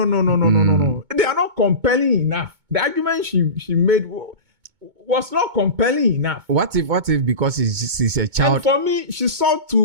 They are not compelling enough. The argument she made was not compelling enough. What if because she's a child? And for me, she sought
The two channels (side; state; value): left; late; 2.2 ms